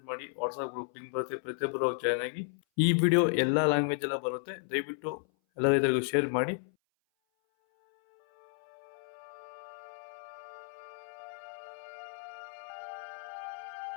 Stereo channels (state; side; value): silent; right; 56 dB below the other